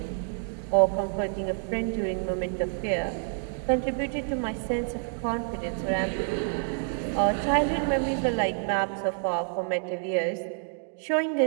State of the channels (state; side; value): silent; left; digital silence